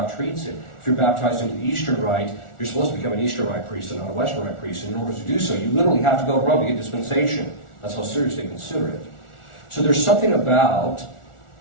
treats it. If you're baptized into the Eastern Rite, you're supposed to become an Eastern Rite priest and not a Western Rite priest, and in order to do so, you literally have to go to Rome to get dispensation. That's how serious they consider it. So there's something about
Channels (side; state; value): right; late; 1.4 ms